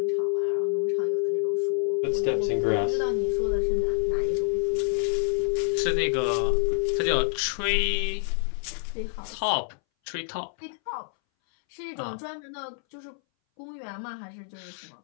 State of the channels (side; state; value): right; silent; 60 dB below the other